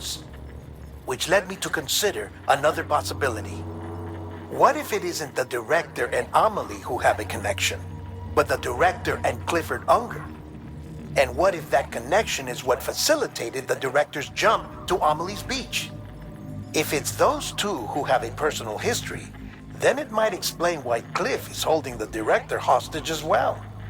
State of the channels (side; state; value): both; identical; correlation 1.00